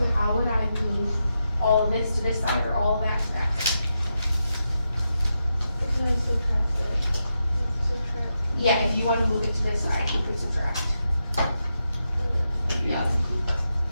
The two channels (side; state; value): both; inverted; correlation -0.86